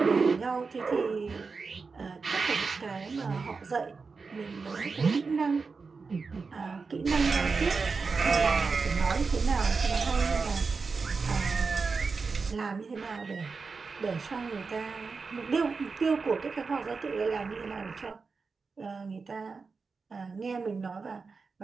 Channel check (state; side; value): quieter; left; 4.6 dB